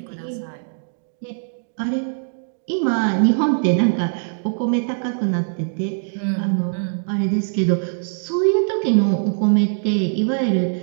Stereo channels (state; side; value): silent; left; digital silence